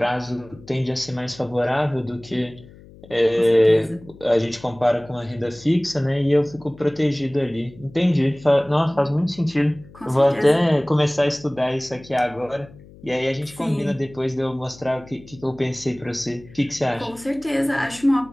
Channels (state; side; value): noise; left; hum, 22 dB below the sound